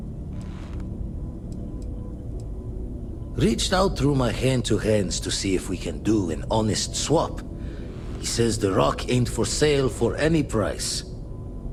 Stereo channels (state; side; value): identical; both; correlation 1.00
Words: Reached out through my hand-to-hands to see if we can do an honest swap. He says the rock ain't for sale for any price.